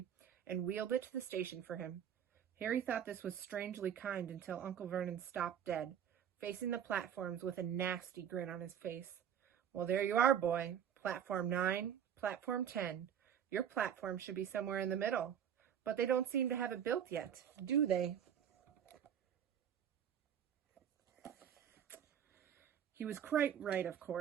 and wheeled it to the station for him. Harry thought this was strangely kind until Uncle Vernon stopped dead, facing the platforms with a nasty grin on his face. "Well, there you are, boy. Platform 9, platform 10. Your platform should be somewhere in the middle. But they don't seem to have it built yet, do they?" He was quite right, of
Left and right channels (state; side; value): quieter; left; 9.1 dB